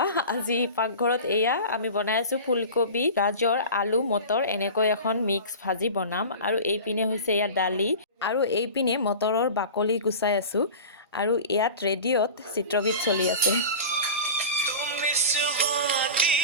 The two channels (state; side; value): inverted; both; correlation -0.33